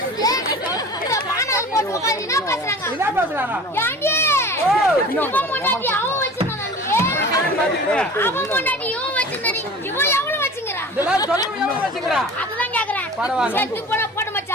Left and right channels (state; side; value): normal; both; correlation 0.39